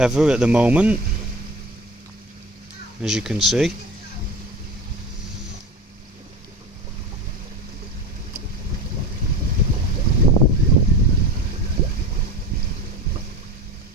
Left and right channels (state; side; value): normal; both; correlation 0.31